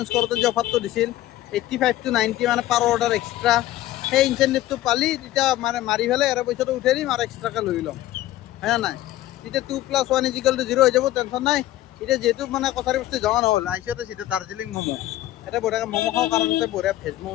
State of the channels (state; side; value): quieter; right; 14.8 dB